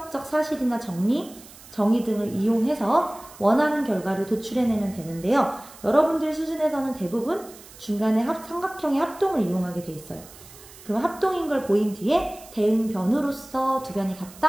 사실이나 정의 등을 이용해서 원하는 결과를 도출해내면 되는데요. 여러분들 수준에서는 대부분 중간에 삼각형의 합동을 이용하게 돼 있어요. 그럼 합동인 걸 보인 뒤에 대응변으로서 두 변이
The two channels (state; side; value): noise; right; hiss, 20 dB below the sound